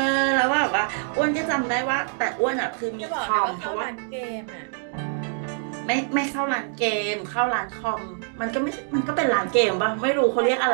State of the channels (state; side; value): silent; left; 62 dB below the other